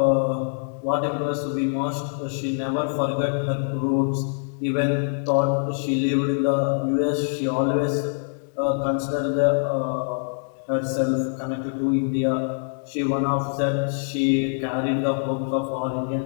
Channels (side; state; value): right; silent; digital silence